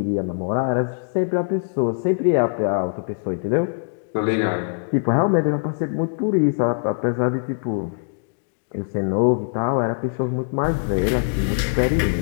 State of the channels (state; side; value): silent; right; digital silence